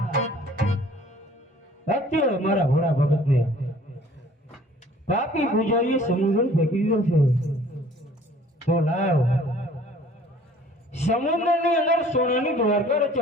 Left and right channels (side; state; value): both; normal; correlation 0.53